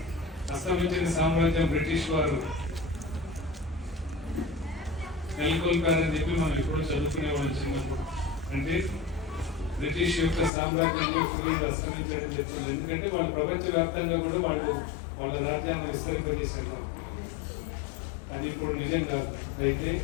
అస్తమించిన సామ్రాజ్యం బ్రిటిష్ వారు నెలకొల్పారని చెప్పి మనం ఎప్పుడు చదువుకునేవాళ్ళం చిన్నప్పుడు. అంటే బ్రిటిష్ యొక్క సామ్రాజ్యంలో సూర్యుడు అస్తమించడం చెప్తుంది. ఎందుకంటే వాళ్ళు ప్రపంచవ్యాప్తంగా కూడా వాళ్ళ రాజ్యాన్ని విస్తరింపజేశారు. అది ఇప్పుడు నిజం కాదు. అయితే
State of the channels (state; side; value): drops out; right; at 10.5 s